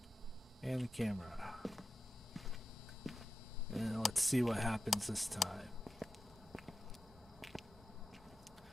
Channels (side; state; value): both; normal; correlation 0.92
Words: And the camera. And let's see what happens this time.